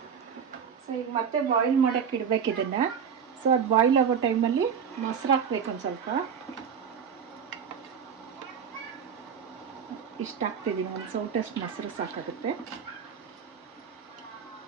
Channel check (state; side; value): quieter; left; 7.3 dB